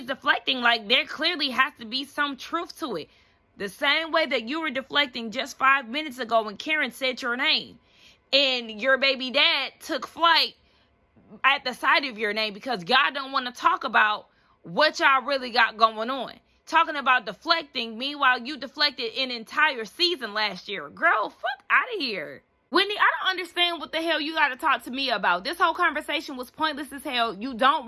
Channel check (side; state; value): both; identical; correlation 1.00